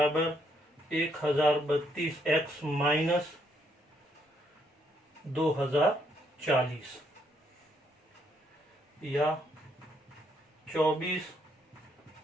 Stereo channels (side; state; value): both; normal; correlation 0.72